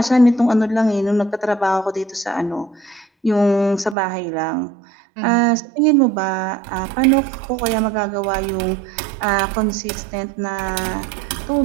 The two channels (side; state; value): left; drops out; at 4.0 s